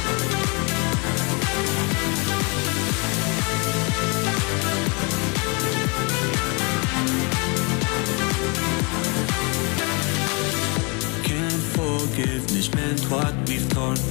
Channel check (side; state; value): right; quieter; 31.4 dB